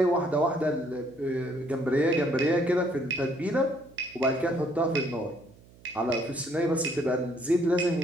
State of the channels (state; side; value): noise; right; hum, 25 dB below the sound